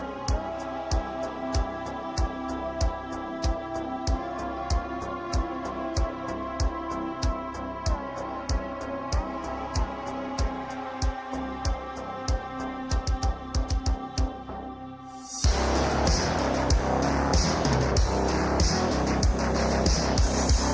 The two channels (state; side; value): identical; both; correlation 1.00